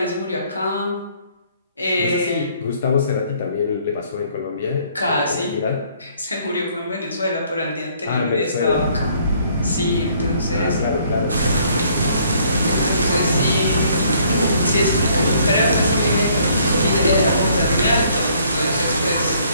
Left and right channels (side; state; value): both; inverted; correlation -0.62